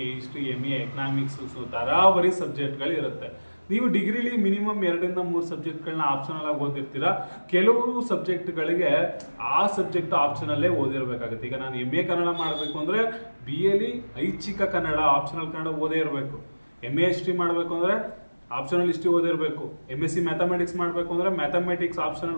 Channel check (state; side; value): inverted; both; correlation -1.00